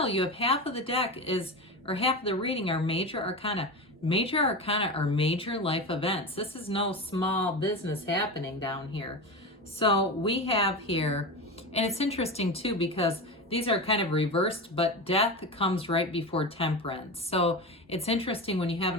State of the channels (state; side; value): normal; both; correlation 0.24